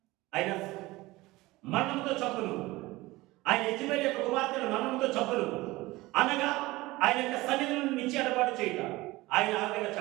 ఆయన మరణంతో చంపును, ఆయన యెజబెలు యొక్క కుమార్తెను మరణంతో చంపును, అనగా ఆయన యొక్క సన్నిధి నుండి నిచ్చి ఎడబాటు చేయట. ఆయన ఆ విధంగా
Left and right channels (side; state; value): left; quieter; 19.9 dB